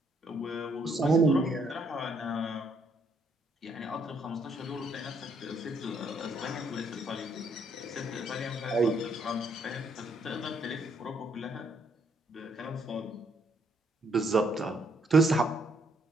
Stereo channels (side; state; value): both; normal; correlation 0.70